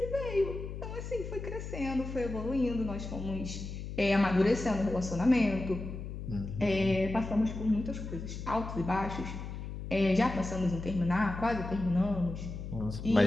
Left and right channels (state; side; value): noise; left; hum, 8 dB below the sound